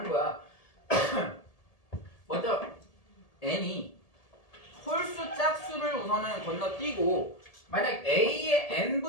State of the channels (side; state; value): right; late; 1.7 ms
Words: 거야. 먼저 n이 홀수 짝수를 우선은 건너뛰고 만약 a의